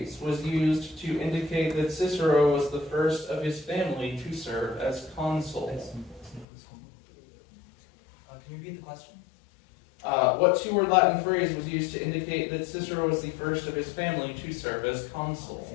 was used to indicate that Cicero was the first of his family to serve as consul? Can you repeat the question? What two-word Latin phrase was used to indicate that Cicero was the first of his family to serve as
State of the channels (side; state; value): right; drops out; at 6.5 s